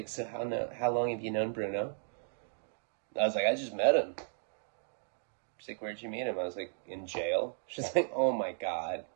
so how long have you known Bruno? I was like, I just met him. She's like, where'd you meet him? I was like, in jail. She's like, oh my God.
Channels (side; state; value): left; silent; digital silence